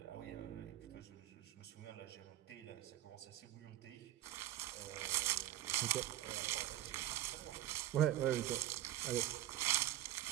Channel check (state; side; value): quieter; left; 13.7 dB